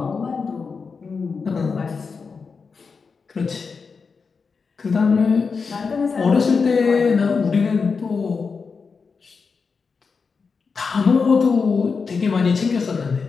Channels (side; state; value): right; quieter; 5.1 dB